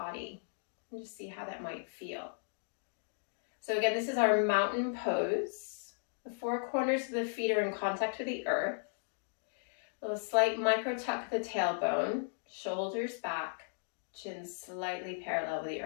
And just see how that might feel. So again, this is our mountain pose. The four corners of the feet are in contact with the earth. A little slight micro tuck of the tailbone, shoulders back, chin slightly parallel with the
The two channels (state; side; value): silent; right; digital silence